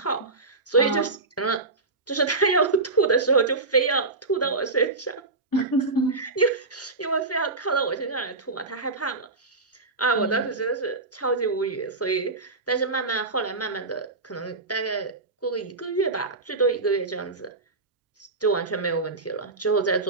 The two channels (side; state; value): left; quieter; 3.5 dB